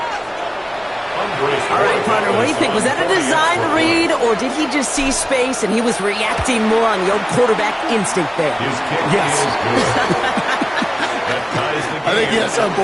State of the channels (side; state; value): both; identical; correlation 1.00